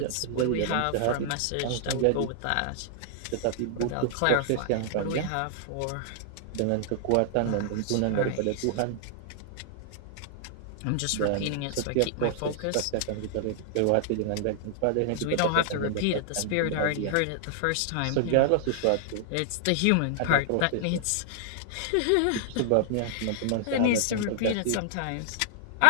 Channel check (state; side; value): different; both; correlation -0.01